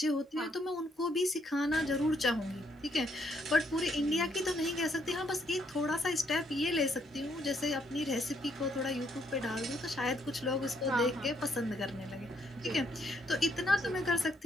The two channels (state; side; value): normal; both; correlation 0.72